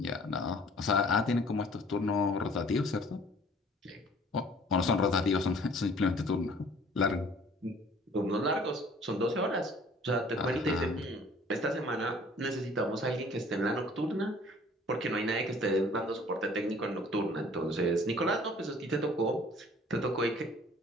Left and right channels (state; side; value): normal; both; correlation 0.53